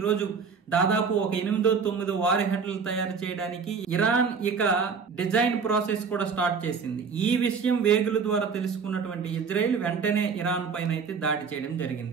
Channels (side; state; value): left; quieter; 5.6 dB